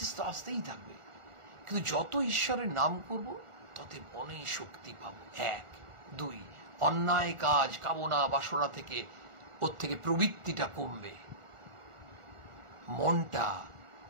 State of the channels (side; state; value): left; late; 1.4 ms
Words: তো আসতেই থাকবে। কিন্তু যত ঈশ্বরের নাম করব তত মনে শক্তি পাবো। 1, 2, অন্যায় কাজ কামনা বাসনা থেকে ওর থেকে প্রবৃত্তিটা কমবে, মনটা